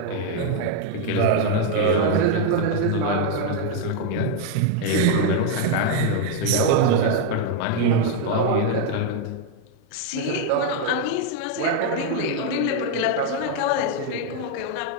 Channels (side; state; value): both; different; correlation 0.01